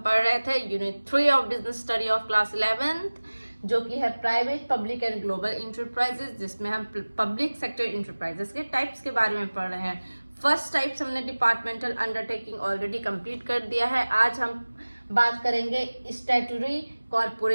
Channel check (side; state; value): both; inverted; correlation -1.00